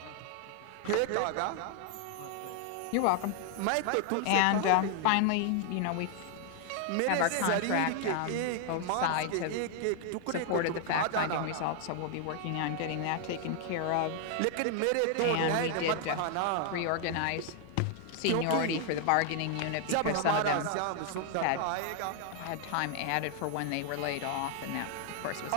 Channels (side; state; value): both; different; correlation 0.00